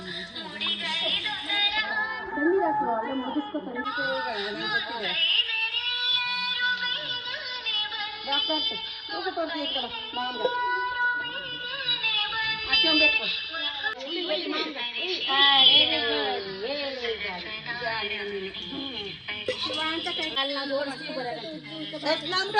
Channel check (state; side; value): identical; both; correlation 1.00